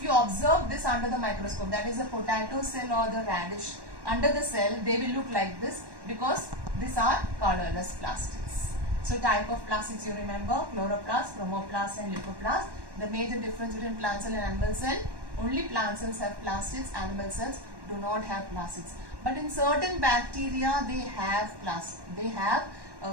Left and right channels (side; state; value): left; late; 1.1 ms